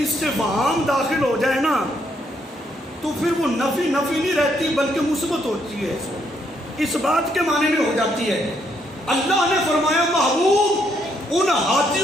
داخل ہو جائے نا تو پھر وہ نفی نہیں رہتی بلکہ مثبت ہوتی ہے, اس بات کے معنی میں ہو جاتی ہے. اللہ نے فرمایا محبوب ان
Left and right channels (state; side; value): normal; both; correlation 0.73